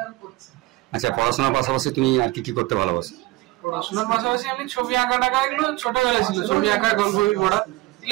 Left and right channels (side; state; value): left; quieter; 19.8 dB